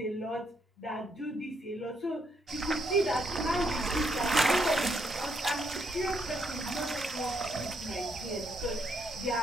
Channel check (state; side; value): normal; both; correlation 0.75